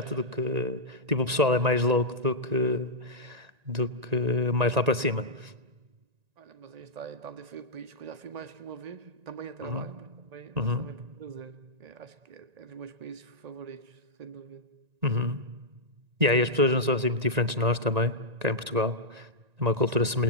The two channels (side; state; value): left; late; 1.9 ms